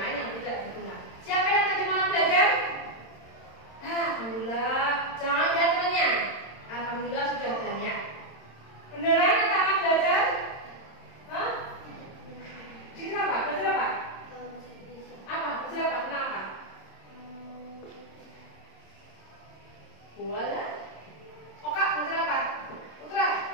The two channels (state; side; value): late; right; 26 ms